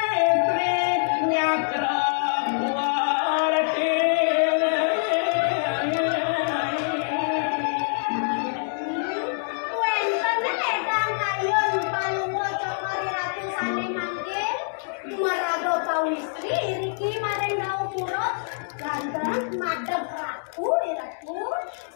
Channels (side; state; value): right; silent; digital silence